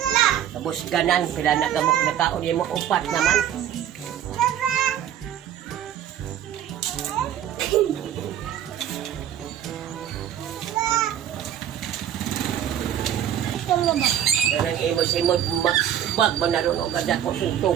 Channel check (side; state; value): left; quieter; 10.3 dB